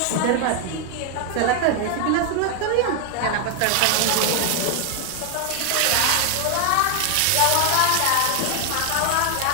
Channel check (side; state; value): both; different; correlation 0.00